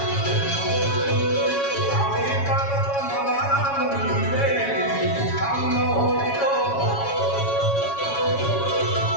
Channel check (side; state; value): right; late; 7.2 ms